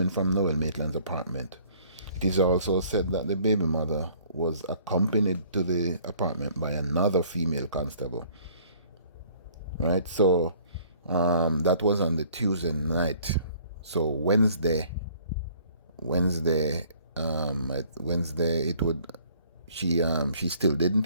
from Noel Maitland's apartment. It is also said that the baby mother was accompanied to the apartment by another female constable. Right? So that was on the Tuesday night. So Wednesday, it would she still didn't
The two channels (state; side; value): inverted; both; correlation -0.57